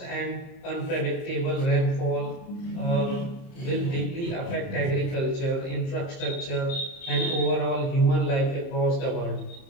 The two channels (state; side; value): late; right; 30 ms